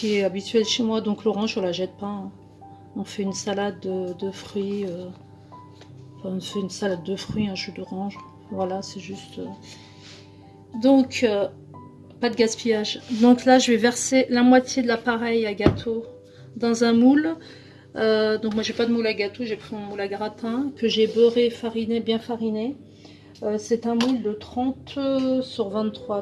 est habituel chez moi. Donc l'orange on la jette pas, hein. On fait une salade de fruits, enfin, on fait une salade de fruits, un jus d'orange, voilà, c'est juste donc pas de gaspillage. Donc là je vais verser la moitié de l'appareil à gâteau dans un moule. Donc moi j'ai pas de moule à gâteau, j'ai pris mon moule à gratin que j'ai beurré, fariné, bien fariné. C'est un moule de 30 sur 23,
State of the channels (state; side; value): identical; both; correlation 1.00